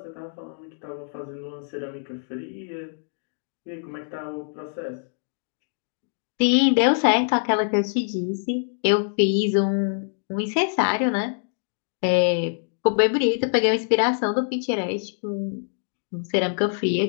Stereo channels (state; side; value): silent; right; digital silence